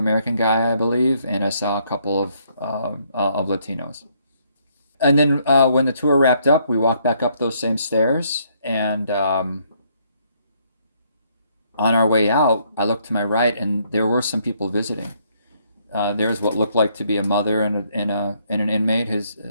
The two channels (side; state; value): both; inverted; correlation -0.70